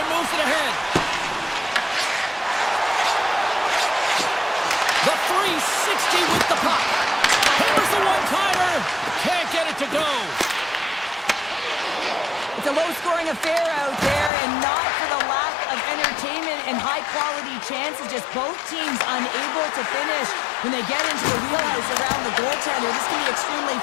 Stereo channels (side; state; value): right; drops out; at 14.3 s